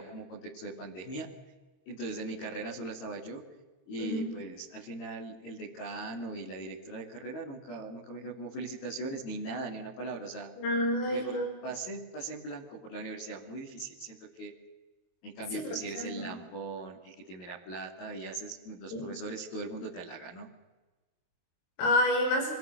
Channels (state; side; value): late; right; 22 ms